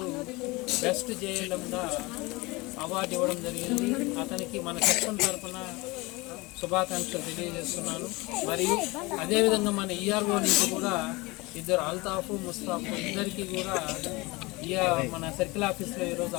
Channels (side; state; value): right; quieter; 23.7 dB